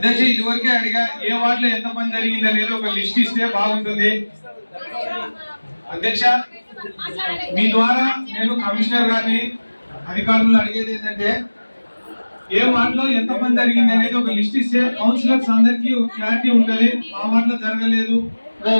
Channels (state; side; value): inverted; both; correlation -1.00